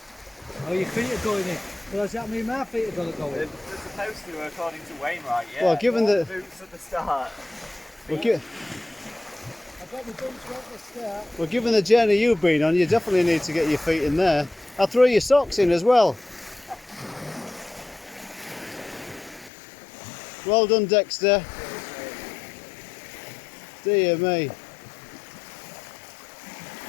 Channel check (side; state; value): right; drops out; at 19.5 s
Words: Oh, your feet are going in. Well, does that mean my feet are going to go in? They're supposed to, according to Wainwright. Yeah. Well, given the boots at the start. I've got my boots right at the start. Well, given the journey you've been on, you definitely need to get your feet in there. I'll throw your socks in as well. Well done, Dexter. Dear me.